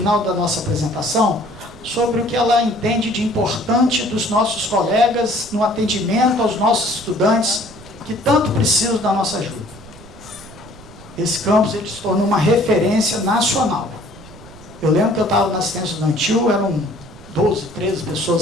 da nossa apresentação sobre o que ela entende de importante dos nossos colegas no atendimento aos nossos estudantes que tanto precisam da nossa ajuda. Esse campus, ele se tornou uma referência nacional. Eu lembro que eu estava na assistência estudantil, eram 12, 13 pessoas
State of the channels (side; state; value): right; noise; rumble, 19 dB below the sound